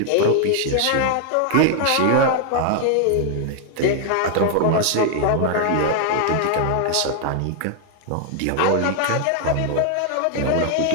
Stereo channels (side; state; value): both; different; correlation 0.00